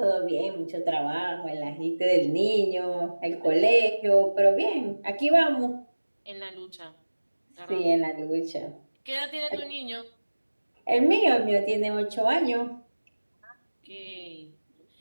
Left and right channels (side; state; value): both; inverted; correlation -1.00